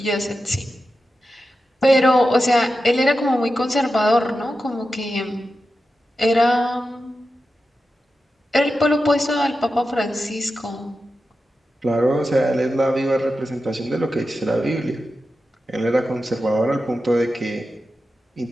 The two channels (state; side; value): normal; both; correlation 0.91